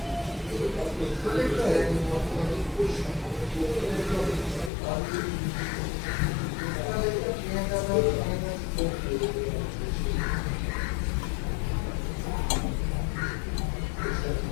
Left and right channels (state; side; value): drops out; right; at 4.7 s